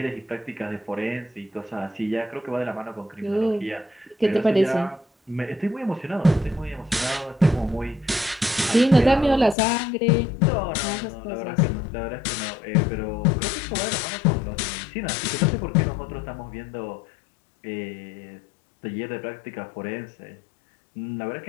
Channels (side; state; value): right; drops out; at 9.6 s